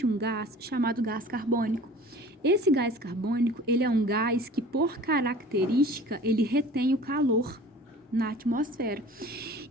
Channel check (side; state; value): both; normal; correlation 0.44